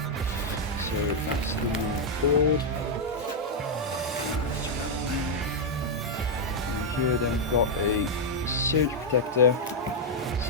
So that's the new board. And here then we've got a surge protector,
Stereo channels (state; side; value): normal; both; correlation -0.02